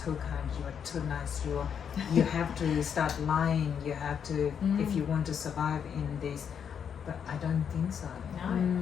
kind, you're too nice, you have to start lying, you have to, if you want to survive in this. But I don't think so.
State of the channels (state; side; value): quieter; right; 7.7 dB